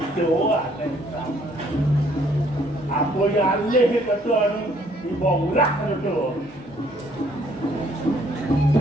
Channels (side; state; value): left; noise; hum, 28 dB below the sound